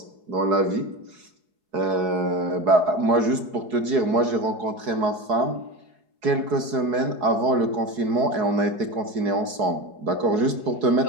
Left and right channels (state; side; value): late; left; 4.7 ms